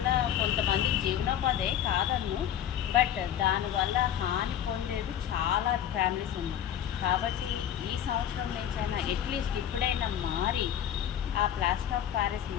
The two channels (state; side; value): quieter; right; 10.2 dB